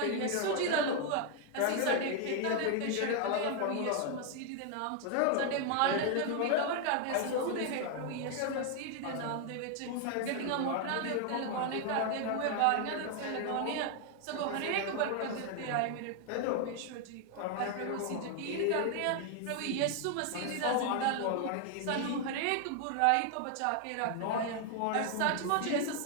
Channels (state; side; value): different; both; correlation 0.00